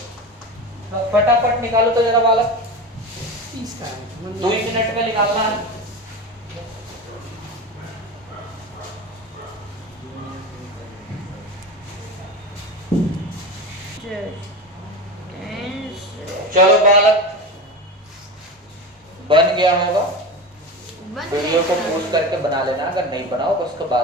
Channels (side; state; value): both; normal; correlation 0.25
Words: तो फटाफट निकालो तो जरा वाला, 2 मिनट में निकालना है। सर 10 सर चलो बालक, बन गया होगा। बन वीडियो को गया, पॉज करके बना लेना, अगर नहीं बनाओ तो उसके